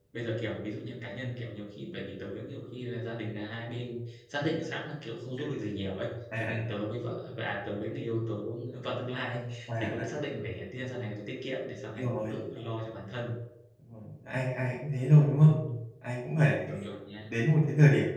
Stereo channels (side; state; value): both; identical; correlation 1.00